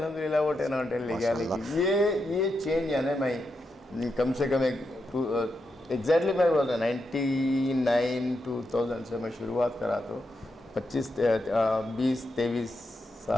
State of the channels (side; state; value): both; normal; correlation 0.85